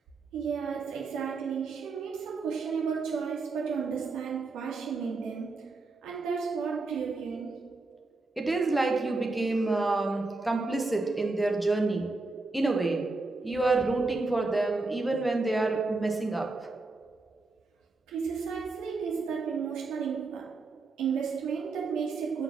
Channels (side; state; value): left; quieter; 3.6 dB